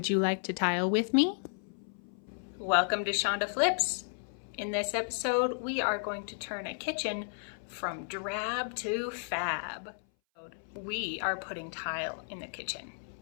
you like to tile with me? Welcome to Shonda Flips. In this episode, we are going to turn a kitchen from drab to fab. We are putting tile in the kitchen.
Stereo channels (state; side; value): silent; right; 56 dB below the other